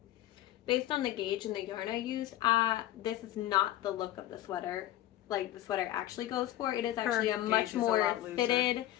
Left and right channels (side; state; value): right; quieter; 14.0 dB